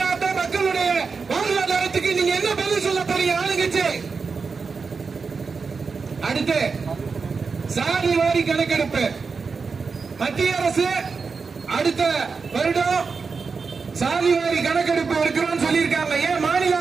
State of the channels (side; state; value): left; quieter; 4.9 dB